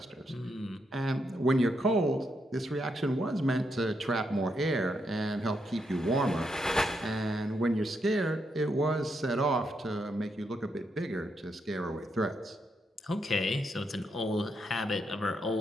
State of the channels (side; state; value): both; normal; correlation 0.80